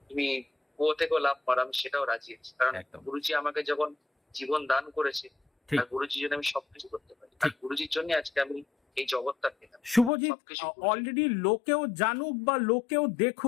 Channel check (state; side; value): drops out; right; at 10.1 s